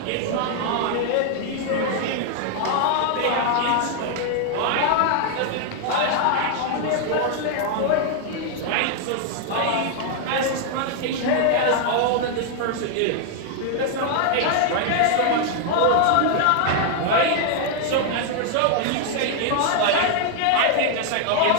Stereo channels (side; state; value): both; different; correlation 0.00